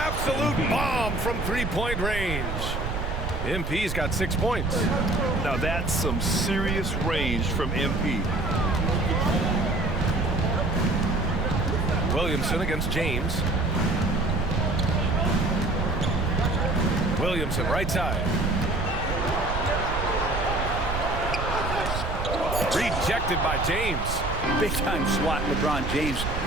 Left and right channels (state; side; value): noise; right; rumble, 4 dB below the sound